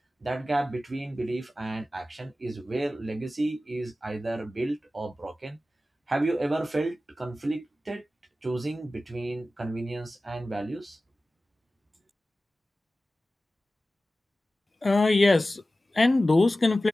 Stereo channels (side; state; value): both; normal; correlation 0.95